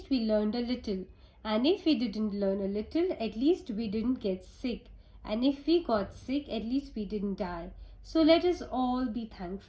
we learned a little, and if we didn't learn a little, at least we didn't get sick, and if we got sick, at least we didn't die. So let us all be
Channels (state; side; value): identical; both; correlation 1.00